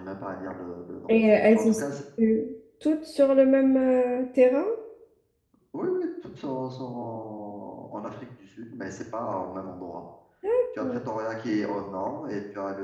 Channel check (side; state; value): both; identical; correlation 1.00